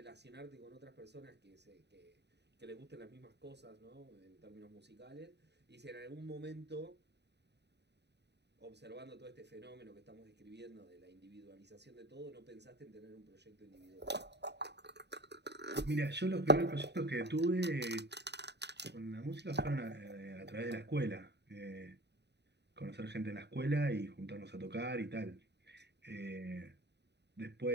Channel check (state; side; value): late; left; 0.50 ms